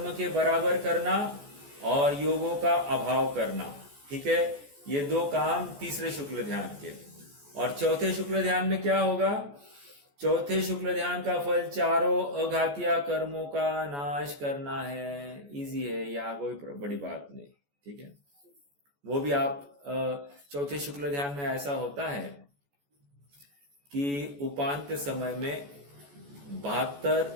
के बराबर करना और योगों का अभाव करना। ठीक है, ये 2 काम तीसरे शुक्ल ध्यान के। और चौथे शुक्ल ध्यान में क्या होगा? चौथे शुक्ल ध्यान का फल चारों अघातीय कर्मों का नाश करना है। इजी है, यहाँ कोई बड़ी बात नहीं। ठीक है, वो भी आप चौथे शुक्ल ध्यान में ऐसा होता है कि उपांत्य समय में 72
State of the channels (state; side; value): late; left; 14 ms